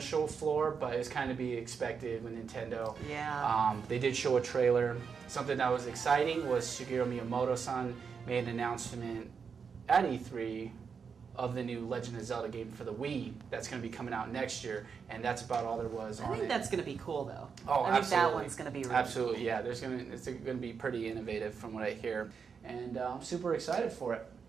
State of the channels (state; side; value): quieter; left; 6.1 dB